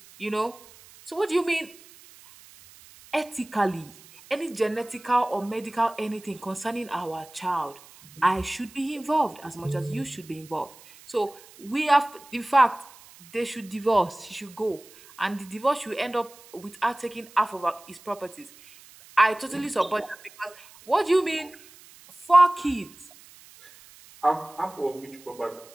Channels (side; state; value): right; noise; hiss, 22 dB below the sound